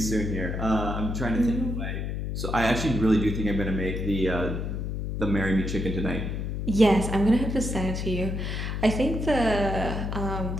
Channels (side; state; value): left; noise; hum, 3 dB below the sound